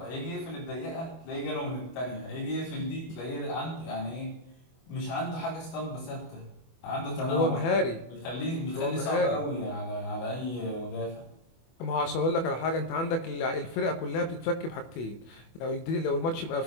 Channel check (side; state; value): right; late; 24 ms